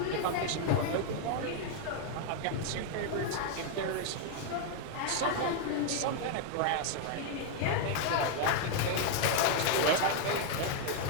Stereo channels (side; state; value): both; different; correlation 0.00